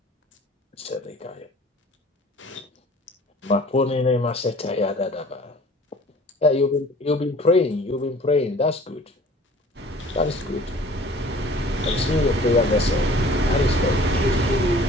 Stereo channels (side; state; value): both; normal; correlation 0.49